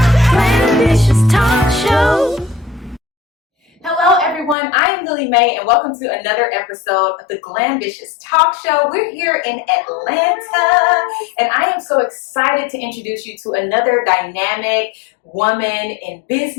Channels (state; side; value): drops out; right; at 4.5 s